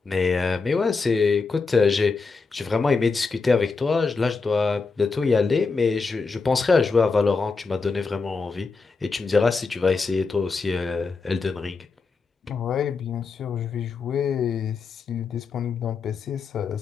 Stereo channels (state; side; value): quieter; right; 4.4 dB